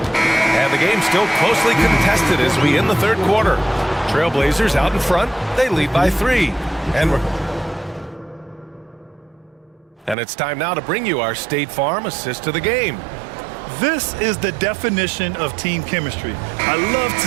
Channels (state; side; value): drops out; left; at 10.2 s